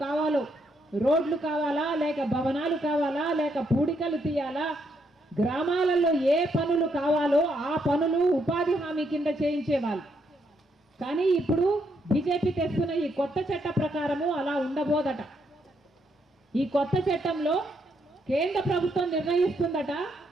కావాలో, రోడ్లు కావాలా, లేక భవనాలు కావాలా, లేక పూడికలు తీయాలా, గ్రామాలలో ఏ పనులు కావాలో ఆ పనులు ఉపాధి హామీ కింద చేయించేవాళ్ళు. కానీ ఇప్పుడు బీజేపీ తెస్తున్న ఈ కొత్త చట్ట ప్రకారము అలా ఉండబోదట. ఈ కొత్త చట్టంలో కేంద్ర ప్రభుత్వం నిర్ణయిస్తుందట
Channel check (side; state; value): both; normal; correlation 0.76